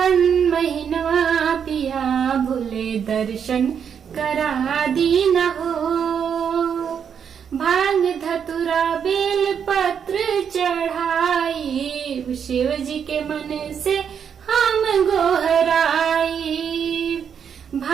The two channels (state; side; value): quieter; left; 7.6 dB